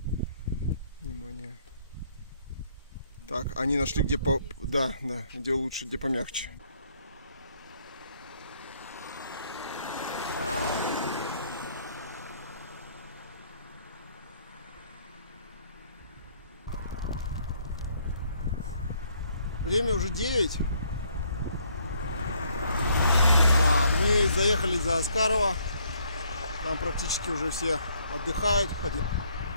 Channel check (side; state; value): both; inverted; correlation -0.66